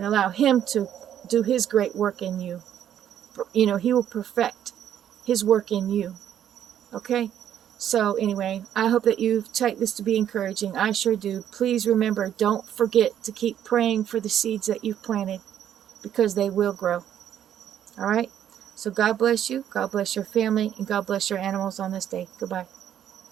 allow him to do his great work in you. You know, he will perfect his work in you. Okay? So anyway, I hope that you take this to be encouraging. I sure do. Please remember, don't forget to keep praying for the seeds that you've planted, because they will grow. All right? So God bless you. God bless your family. And God bless your animals on this day. Goodbye.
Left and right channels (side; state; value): left; quieter; 10.2 dB